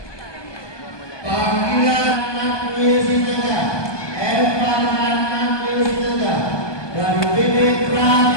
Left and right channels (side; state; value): right; late; 1.2 ms